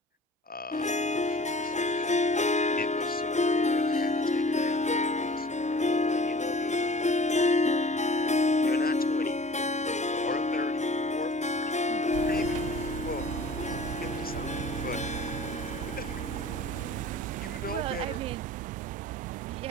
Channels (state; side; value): normal; both; correlation 0.45